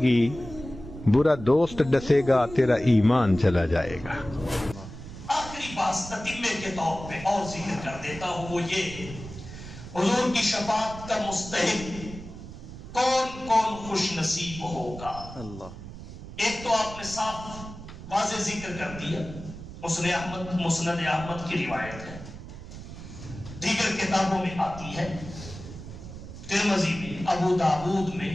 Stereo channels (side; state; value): right; noise; rumble, 12 dB below the sound